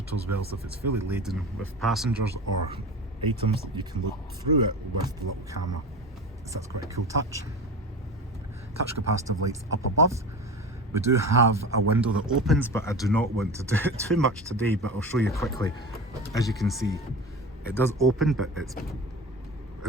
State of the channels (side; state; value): both; normal; correlation 0.30